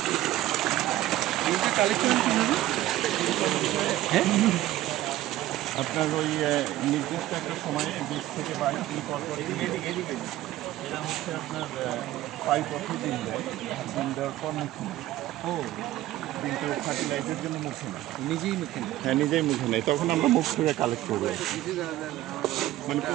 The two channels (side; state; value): left; quieter; 15.0 dB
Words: আপনার ওই নির্দিষ্ট একটা সময়ে 20 থেকে 22 দিন পর পর এরা হচ্ছে আপনার 5 বছর ডিম দেয়। ডিম দেওয়ার পর মুখে নেয়। কিন্তু ফার্টিলাইজের জন্য মুখে নেয়, নিজেই মুখে নেয়। হ্যাঁ নিজেই মুখে নেয়। তখন আমরা মুখ থেকে কালেক্ট করবো, মানে